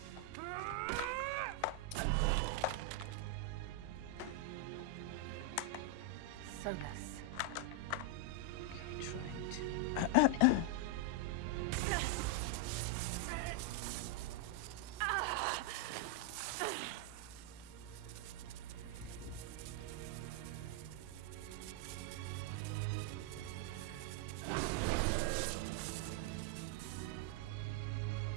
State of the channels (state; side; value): different; both; correlation 0.00